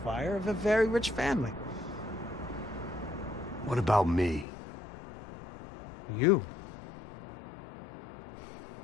of a very rich family. What about me? You.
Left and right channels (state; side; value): drops out; right; at 4.5 s